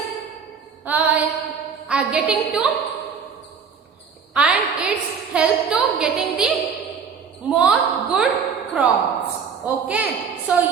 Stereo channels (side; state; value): left; quieter; 6.3 dB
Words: getting to and it's help to getting the more good crops. Okay, so